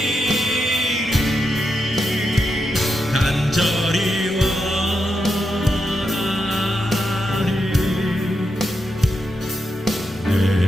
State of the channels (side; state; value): both; normal; correlation 0.85